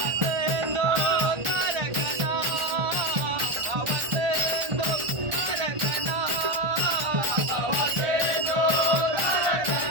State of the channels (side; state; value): left; late; 1.4 ms